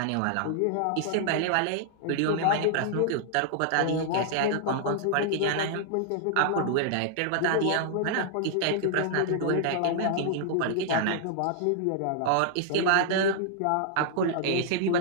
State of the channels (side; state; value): both; different; correlation -0.01